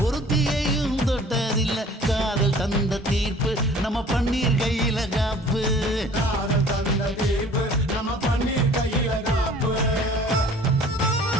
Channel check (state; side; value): normal; both; correlation 0.50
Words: ஒருத்தியையும் தொட்டதில்ல காதல் தந்த தீர்ப்பு நம்ம பன்னீர் கையில காப்பு காதல் தந்த தீர்ப்பு நம்ம பன்னீர் கையில காப்பு